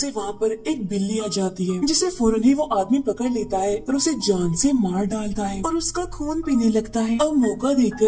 वहाँ पर एक बिल्ली आ जाती है, जिसे फौरन ही वो आदमी पकड़ लेता है और उसे जान से मार डालता है और उसका खून पीने लगता है। अब मौका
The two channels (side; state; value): both; identical; correlation 1.00